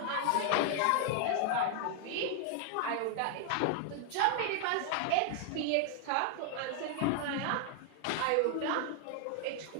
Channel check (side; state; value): both; different; correlation 0.00